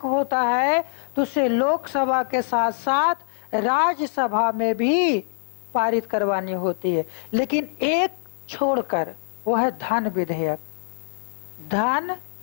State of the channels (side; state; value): right; silent; digital silence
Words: है तो उसे लोकसभा के साथ साथ राज्यसभा में भी पारित करवानी होती है, लेकिन एक छोड़कर, वो है धन विधेयक। धन